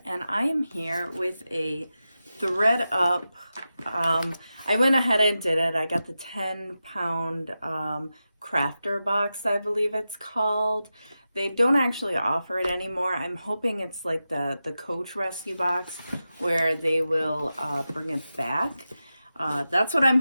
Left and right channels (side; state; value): both; inverted; correlation -0.92